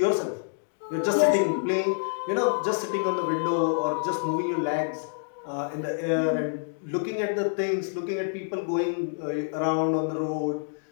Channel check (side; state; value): right; silent; digital silence